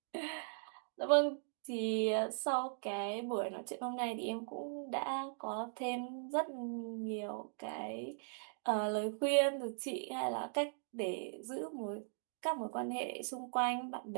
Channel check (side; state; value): left; silent; digital silence